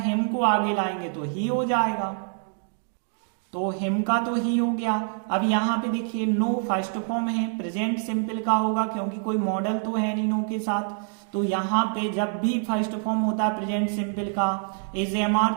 हिम को आगे लाएंगे तो ही हो जाएगा। तो हिम का तो ही हो गया। अब यहाँ पे देखिए नो फर्स्ट फॉर्म है, प्रेजेंट सिंपल का होगा क्योंकि कोई मॉडल तो है नहीं नो के साथ। तो यहाँ पे जब भी फर्स्ट फॉर्म होता है प्रेजेंट सिंपल का, is am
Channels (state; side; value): silent; left; 55 dB below the other